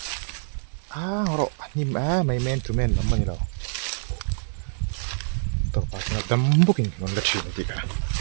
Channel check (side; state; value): left; silent; digital silence